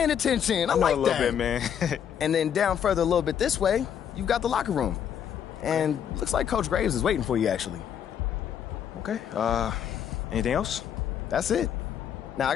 attention. I like a little bit, man. And then down further a little bit this way, you've got the locker room. And looks like Coach Graves is waiting for you, actually. Okay. Anything else? That's it. Now, I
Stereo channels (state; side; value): quieter; right; 8.8 dB